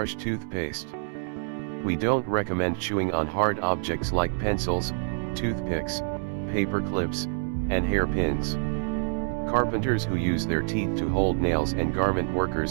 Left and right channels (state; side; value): silent; left; 60 dB below the other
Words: toothpaste. We don't recommend chewing on hard objects like pencils, toothpicks, paper clips, and hairpins. Carpenters who use their teeth to hold nails and garment